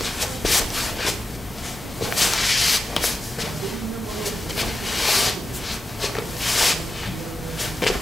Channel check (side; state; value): both; normal; correlation 0.91